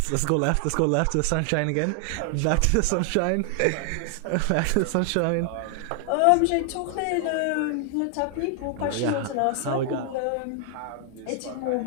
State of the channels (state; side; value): different; both; correlation 0.00